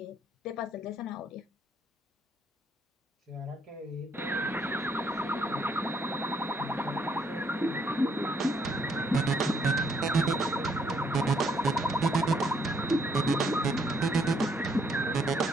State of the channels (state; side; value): normal; both; correlation 0.71